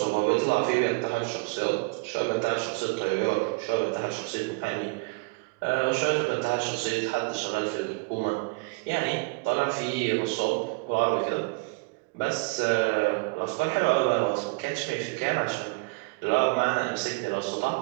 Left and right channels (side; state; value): left; quieter; 28.2 dB